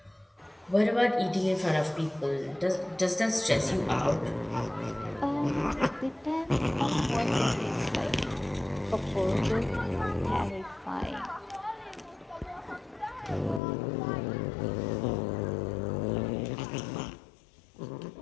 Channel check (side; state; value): right; drops out; at 13.6 s